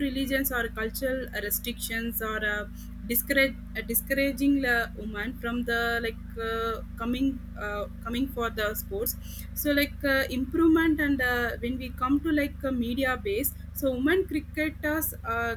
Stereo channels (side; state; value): both; identical; correlation 1.00